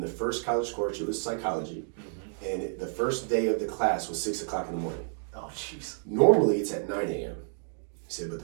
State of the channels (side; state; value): left; silent; 58 dB below the other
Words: the first college course, it was psychology, and the first day of the class was 6 o'clock in the morning. Oh, jeez. Normally, it's at 9 a.m. He said, but